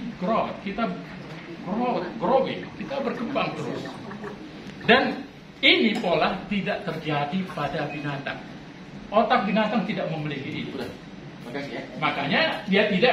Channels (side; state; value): both; identical; correlation 1.00